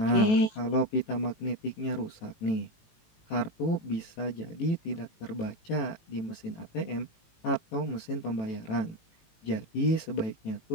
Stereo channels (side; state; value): right; late; 18 ms